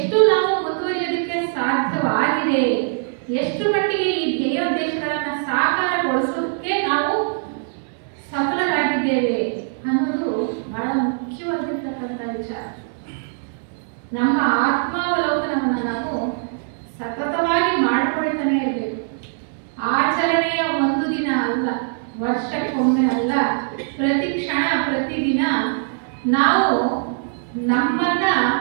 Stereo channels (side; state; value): left; silent; 65 dB below the other